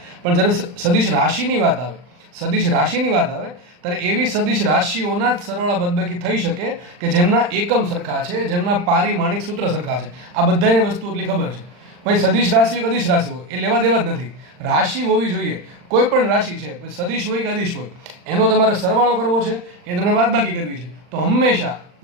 પણ જ્યારે સદિશ રાશિની વાત આવે, સદિશ રાશિની વાત આવે ત્યારે એવી સદિશ રાશિઓના જ સરવાળા બાદબાકી થઈ શકે કે જેમના એકમ સરખા છે, જેમના પારિમાણિક સૂત્ર સરખા છે. આ બધાને વસ્તુ એટલી ખબર છે. ભાઈ સદિશ રાશિ હોય કે અદિશ રાશિ હોય એ લેવા દેવા જ નથી. રાશિ હોવી જોઈએ, કોઈ પણ રાશિ છે, સદિશ હોય કે અદિશ હોય, એનો તમારે સરવાળો કરવો છે કે તમને બાદબાકી કરવી છે. તો હંમેશા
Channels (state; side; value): late; left; 40 ms